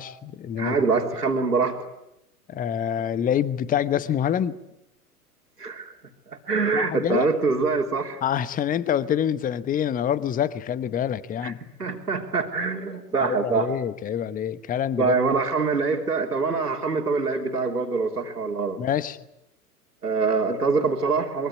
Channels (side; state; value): both; normal; correlation 0.31